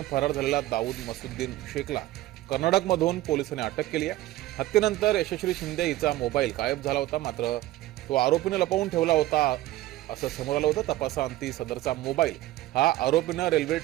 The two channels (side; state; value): left; quieter; 15.9 dB